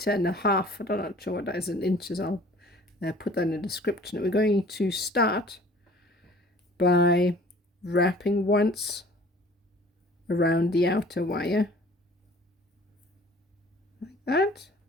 I'm not sure what that is in inches. I'll put that in the description. We're going to start by wrapping once around the outer wire like that,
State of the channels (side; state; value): both; normal; correlation 0.50